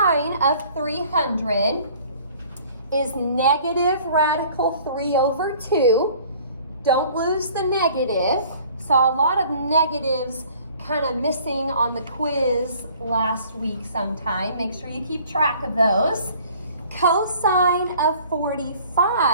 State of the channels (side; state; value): both; inverted; correlation -0.53